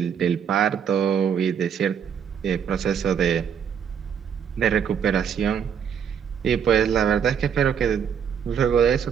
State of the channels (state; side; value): quieter; left; 7.8 dB